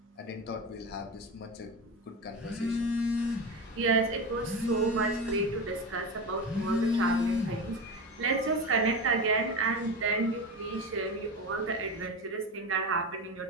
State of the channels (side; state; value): both; normal; correlation 0.23